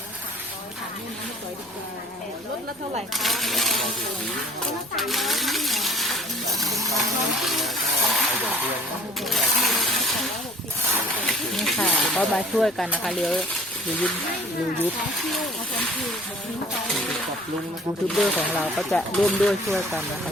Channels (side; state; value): left; noise; rumble, 29 dB below the sound